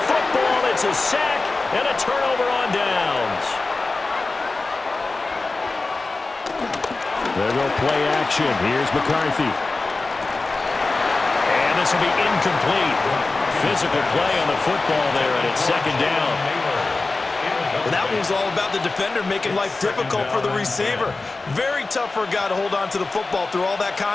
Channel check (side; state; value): right; quieter; 3.5 dB